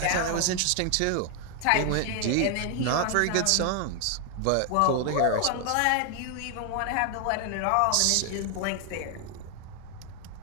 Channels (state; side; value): different; both; correlation 0.00